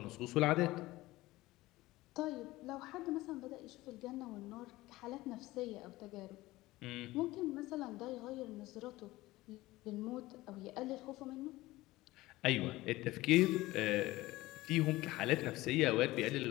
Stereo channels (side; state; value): right; quieter; 18.5 dB